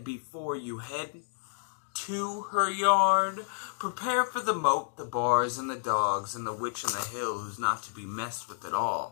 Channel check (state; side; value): silent; right; digital silence